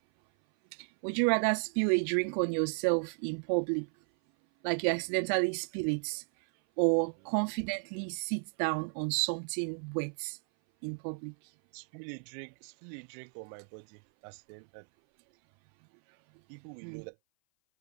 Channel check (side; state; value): left; silent; 56 dB below the other